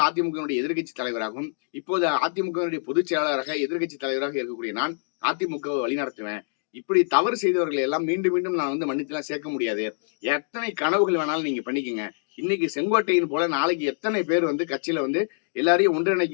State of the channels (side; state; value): right; silent; digital silence